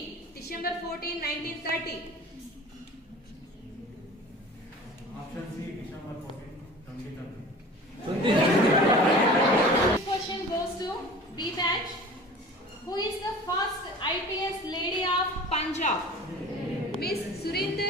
December 14, 1930. Option C, December 14, 2030. Next question goes to B batch. Who is the first IPS lady of Punjab? Miss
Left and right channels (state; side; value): normal; both; correlation 0.41